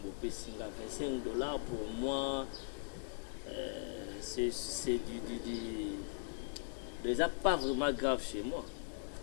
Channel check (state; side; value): silent; right; 51 dB below the other